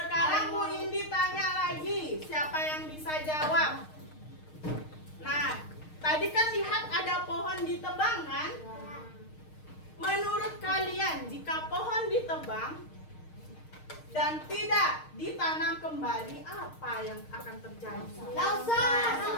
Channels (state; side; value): late; right; 6.5 ms